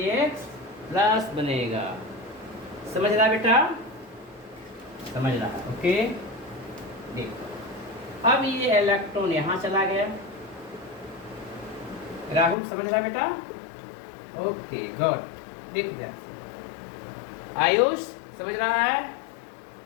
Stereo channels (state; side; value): drops out; right; at 12.6 s